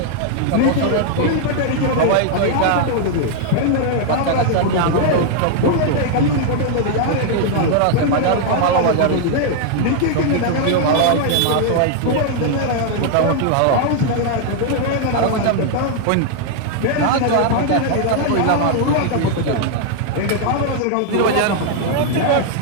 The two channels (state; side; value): different; both; correlation 0.00